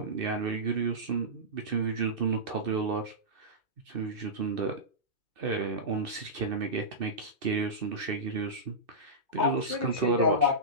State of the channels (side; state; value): left; late; 2.6 ms